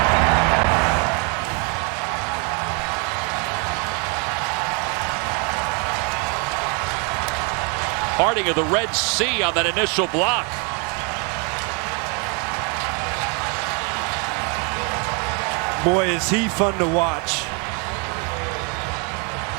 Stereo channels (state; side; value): quieter; left; 35.4 dB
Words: Parting of the Red Sea on that initial block. Boy, is he fun to watch.